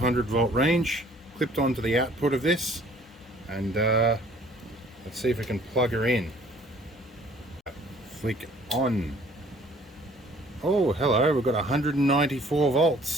volt range clipped onto the output of this, and let's see if we can plug her in. Flick on. Oh, hello, we've got 194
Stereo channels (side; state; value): both; normal; correlation 0.56